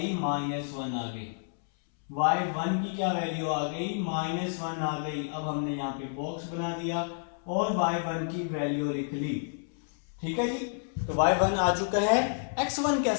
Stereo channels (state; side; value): silent; right; 58 dB below the other